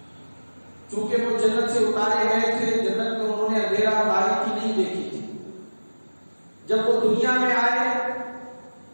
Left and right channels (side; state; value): both; inverted; correlation -1.00